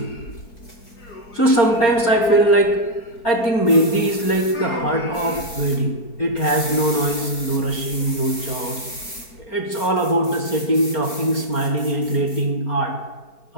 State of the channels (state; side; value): late; right; 4.5 ms